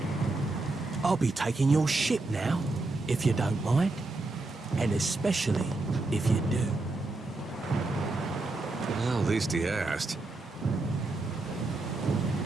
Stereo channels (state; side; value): quieter; left; 3.1 dB